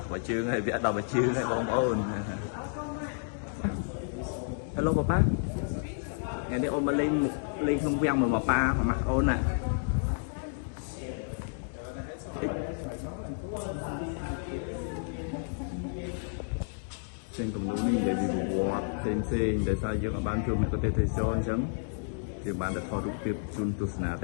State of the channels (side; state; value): right; silent; digital silence